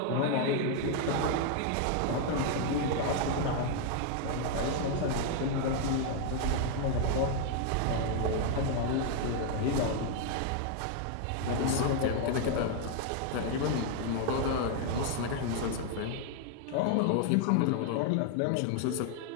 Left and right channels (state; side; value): different; both; correlation 0.00